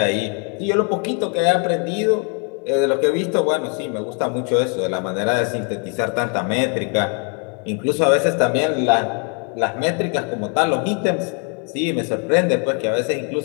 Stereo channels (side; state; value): right; quieter; 38.8 dB